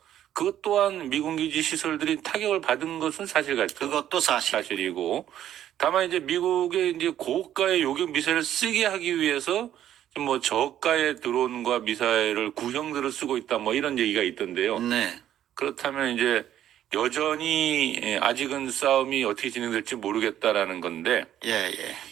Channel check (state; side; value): quieter; left; 11.3 dB